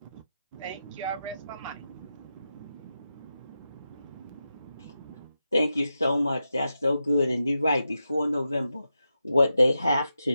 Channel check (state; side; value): inverted; both; correlation -0.89